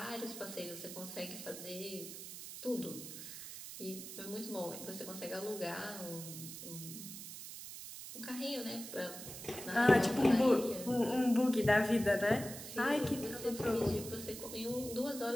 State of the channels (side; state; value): right; noise; hiss, 10 dB below the sound